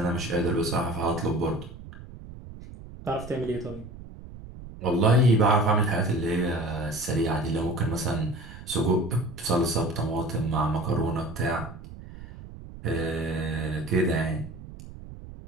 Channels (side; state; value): right; noise; rumble, 15 dB below the sound